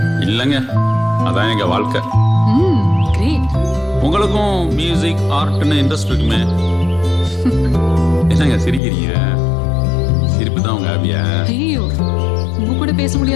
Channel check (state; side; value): drops out; right; at 8.8 s